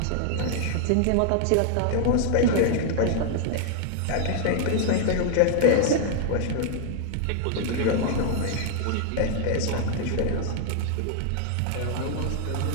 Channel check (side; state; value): both; different; correlation 0.00